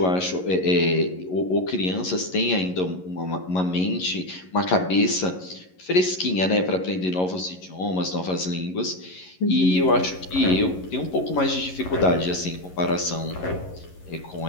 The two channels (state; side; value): late; right; 11 ms